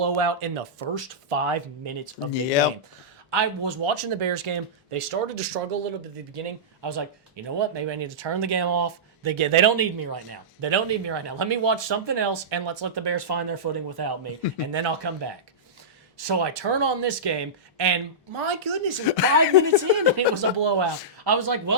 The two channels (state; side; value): normal; both; correlation -0.16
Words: in the first 5 minutes of the game. I was watching the Bears game. They started to struggle a little bit at the beginning. I was like, you know what? Maybe I need to turn the game off. They don't need me right now. Let me watch something else, and let's let the Bears find their footing without me, and then I'll come back. So I turn on this game, and my goodness, it was 5 minutes in, and it was a blowout. I was like,